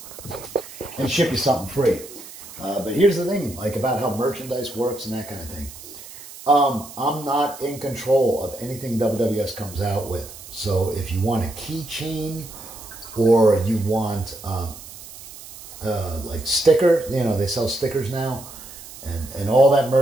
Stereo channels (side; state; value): right; noise; hiss, 16 dB below the sound